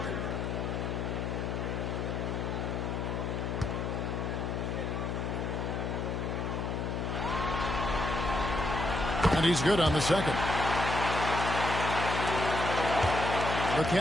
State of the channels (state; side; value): noise; left; hum, 2 dB below the sound